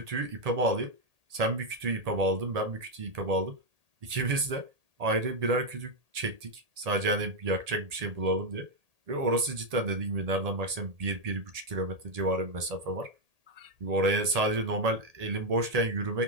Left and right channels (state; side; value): late; left; 1.8 ms